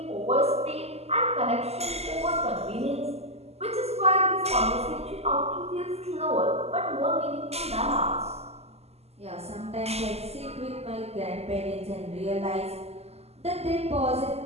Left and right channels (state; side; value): late; left; 0.30 ms